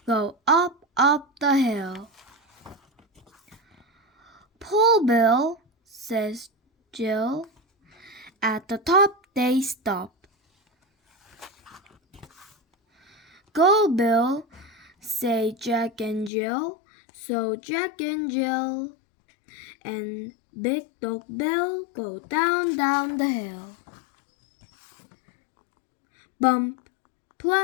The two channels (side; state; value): right; drops out; at 16.3 s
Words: go up the hill. "Pull, Bill," says Jill. At the top they stop. "Go, Bill," say Jack and Jill. So Jack and Jill and Big Dog Bill go down the hill. Bump,